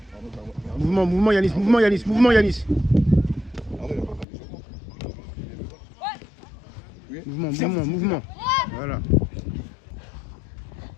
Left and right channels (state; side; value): drops out; right; at 4.2 s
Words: Mouvement Yanis, mouvement Yanis. Mouvement. Voilà.